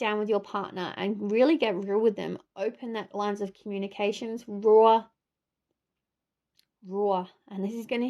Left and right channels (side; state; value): both; identical; correlation 1.00